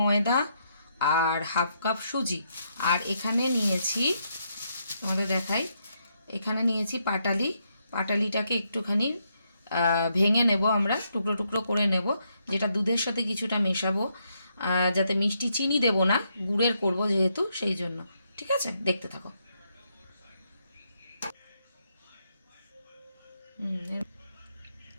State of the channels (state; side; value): inverted; both; correlation -0.78